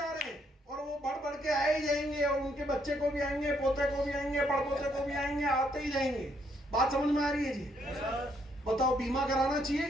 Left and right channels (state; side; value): normal; both; correlation 0.72